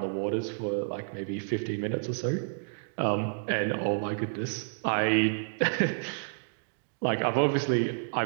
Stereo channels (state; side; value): silent; left; digital silence